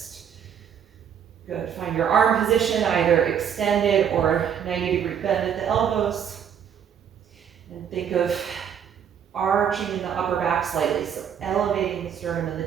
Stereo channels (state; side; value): quieter; left; 8.4 dB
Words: Good. Find your arm position, either extended or 90-degree bend at the elbows. And think of arching in the upper back slightly, so elevating the sternum and the